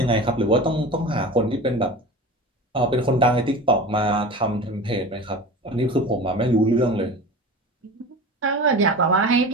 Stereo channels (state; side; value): normal; both; correlation 0.33